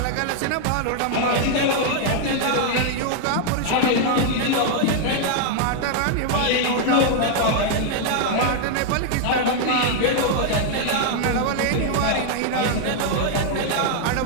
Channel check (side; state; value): both; different; correlation 0.00